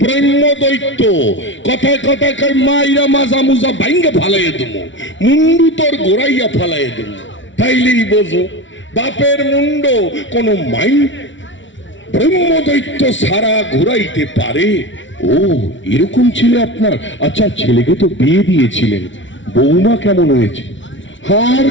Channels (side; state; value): right; late; 0.55 ms